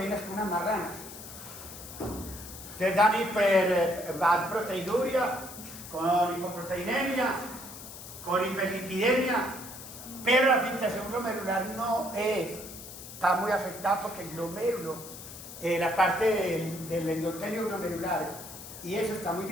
como unas marranas. Te dan hiperproteinuria, con hipoproteinemia, con hiperlipidemia, pero la filtración glomerular no está muy afectada porque el glomérulo, la parte del endotelio glomerular, y eso está muy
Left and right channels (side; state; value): left; noise; hiss, 13 dB below the sound